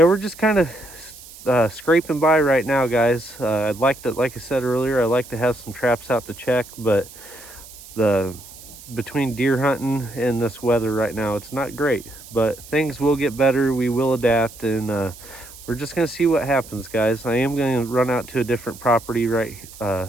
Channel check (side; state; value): right; noise; hiss, 18 dB below the sound